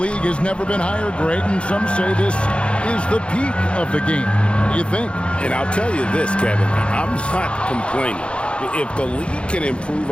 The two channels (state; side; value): late; right; 0.058 ms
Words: has never been higher, Greg, and some say this is the peak of the game. What do you think? And I'll tell you this, Kevin, I'm not complaining. If the league can improve